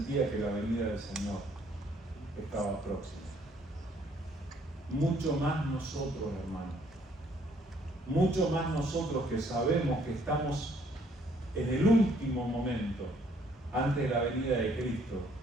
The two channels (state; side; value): normal; both; correlation 0.64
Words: que la venida del Señor estaba próxima. Mucho más nosotros, hermanos, mucho más nosotros que sabemos que estamos en el último momento antes de la venida de Cristo,